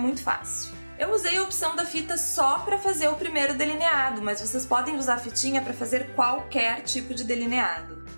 fácil. Eu usei a opção da fita só para fazer o primeiro delineado, mas vocês podem usar a fitinha para fazer qualquer tipo de delineado.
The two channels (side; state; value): both; inverted; correlation -1.00